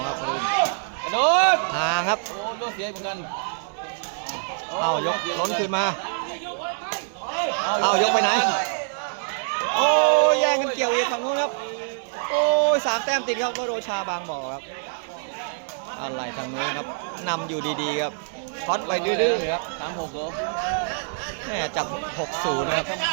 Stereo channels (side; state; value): left; silent; digital silence